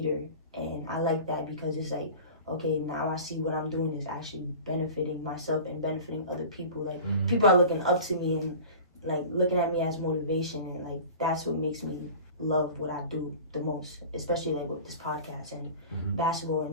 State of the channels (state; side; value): inverted; both; correlation -0.38